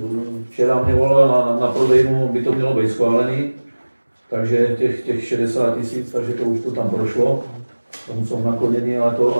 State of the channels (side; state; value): both; inverted; correlation -1.00